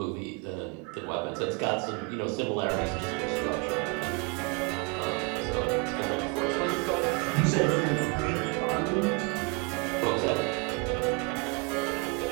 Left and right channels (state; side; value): quieter; left; 31.6 dB